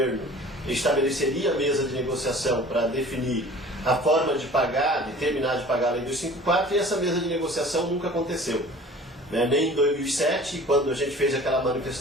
estabeleceria a mesa de negociação para definir a forma de pagar, de terminar de pagar a Lei 254, e essa mesa de negociação nunca aconteceu. Nem em 2007, quando a gente fez aquela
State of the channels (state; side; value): normal; both; correlation 0.45